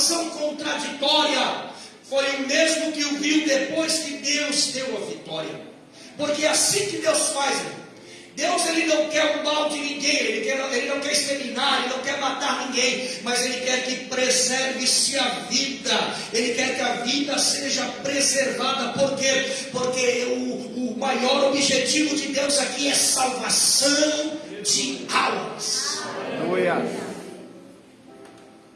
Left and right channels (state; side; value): identical; both; correlation 1.00